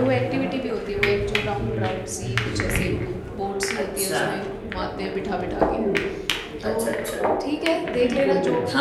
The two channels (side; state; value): both; identical; correlation 1.00